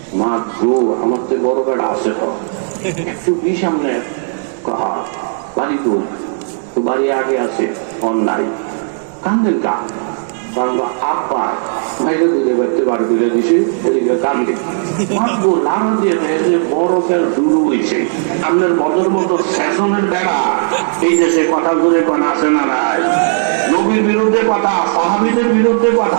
মা গো আমার তো বড় বেড়া আছে তো 120। সামনে কহা বাড়ি তো বাড়ি আগে আছে অন্যায় কান্দেন কা আপা মাইরে দুধে বাড়তে বার করে দিছে, এদিকে কান্দে মারবো লাড়া দিয়ে বরফের শুরু হয়েছে। আপনার বদর মতো শাসনের বেড়া এই দেশে কথা করে কোন আছে না নাই? নবীর বিরুদ্ধে কথা, সাহাবীদের বিরুদ্ধে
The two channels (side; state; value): left; silent; digital silence